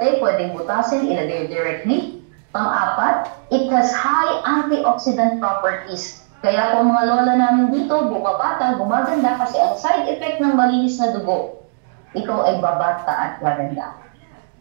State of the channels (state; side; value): silent; left; digital silence